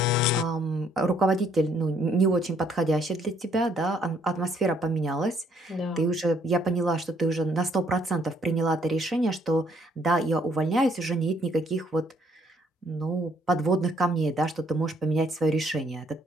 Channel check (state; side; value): normal; both; correlation 0.66